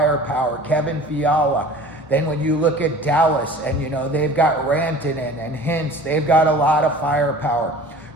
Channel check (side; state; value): both; normal; correlation 0.43